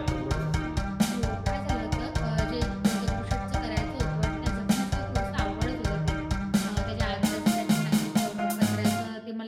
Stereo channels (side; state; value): both; identical; correlation 1.00